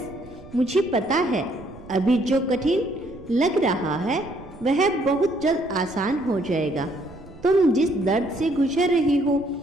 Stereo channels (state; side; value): noise; right; rumble, 20 dB below the sound